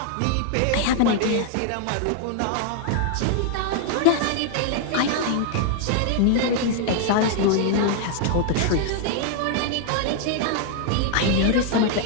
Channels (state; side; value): different; both; correlation 0.00